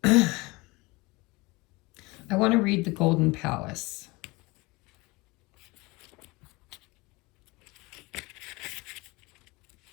I want to read the Golden Palace.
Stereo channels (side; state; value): right; quieter; 23.8 dB